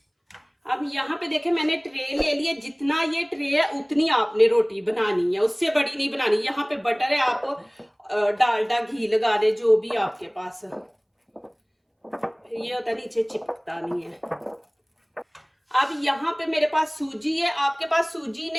अब यहाँ पे देखें मैंने ट्रे ले लिया, जितना ये ट्रे है उतनी आपने रोटी बनानी है, उससे बड़ी नहीं बनानी। यहाँ पे बटर है, आप डालडा घी लगा दे, जो भी आपके पास, ये होता नीचे चिपकता नहीं है। अब यहाँ पे मेरे पास सूजी है, आपके पास सूजी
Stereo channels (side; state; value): both; identical; correlation 1.00